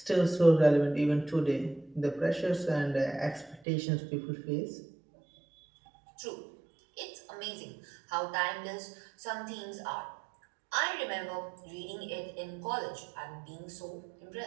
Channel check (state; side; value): drops out; left; at 3.6 s